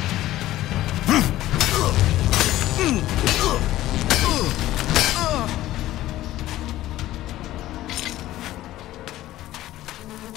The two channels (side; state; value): right; quieter; 15.0 dB